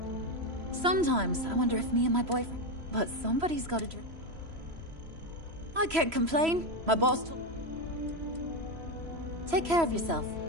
Sometimes I wonder if me and my boyfriend... But somebody's got to drink. I can't complain. My boss told... Take care of yourself.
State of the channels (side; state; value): left; late; 3.0 ms